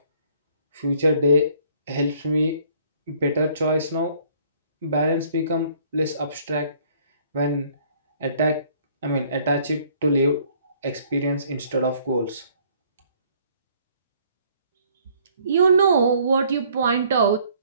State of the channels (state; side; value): inverted; both; correlation -0.60